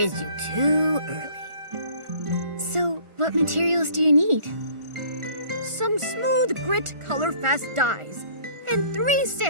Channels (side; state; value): left; late; 1.4 ms